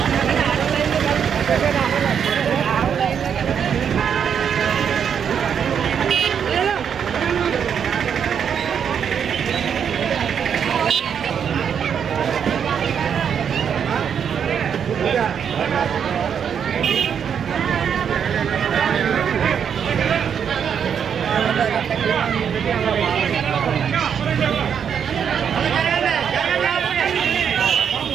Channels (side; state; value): left; quieter; 7.7 dB